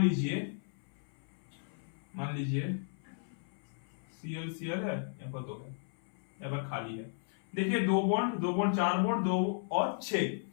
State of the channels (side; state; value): right; silent; 55 dB below the other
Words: लीजिए Cl है, यहाँ पर दो है, यहाँ पर खाली है। देखिए दो बॉन्ड 4 बॉन्ड 2 और 6,